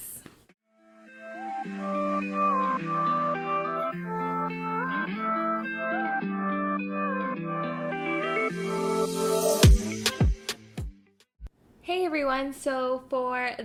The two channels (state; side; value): identical; both; correlation 1.00